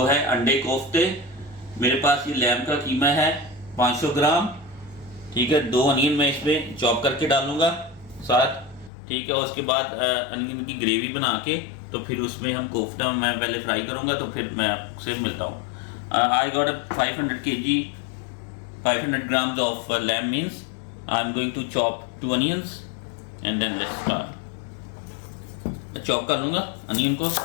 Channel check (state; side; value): drops out; right; at 8.9 s